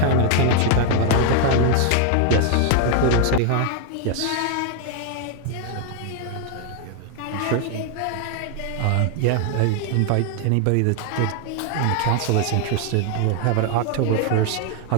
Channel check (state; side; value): different; both; correlation 0.00